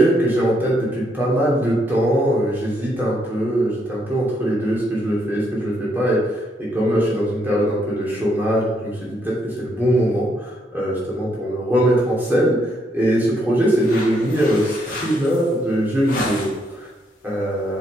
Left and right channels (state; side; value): normal; both; correlation 0.74